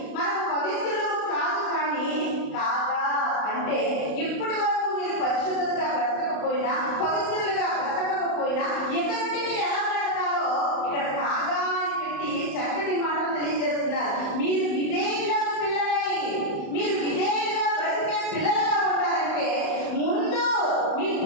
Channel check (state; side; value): late; right; 35 ms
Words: మనం పవిత్రులు కాదు, కానీ కాగా అంటే ఇప్పటి వరకు మీరు పరిశుద్ధులుగా బ్రతకపోయినా, పవిత్రులుగా బ్రతకపోయినా ఎక్కడి మీరు ఎలా బ్రతకాలో ఇక్కడ కాగా అని పెట్టి చక్కటి మాటలు తెలియజేస్తున్నారు. మీరు విధేయులకు పిల్లలై, మీరు విధేయులుగా బ్రతికే పిల్లలుగా ఉండాలంటే ముందు మీ